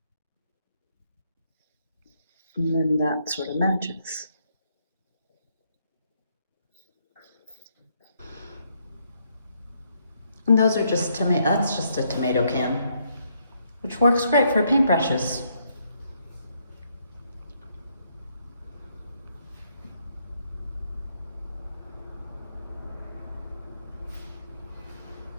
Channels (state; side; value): inverted; both; correlation -0.74